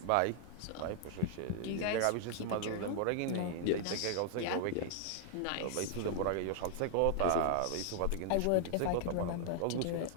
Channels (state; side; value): different; both; correlation 0.00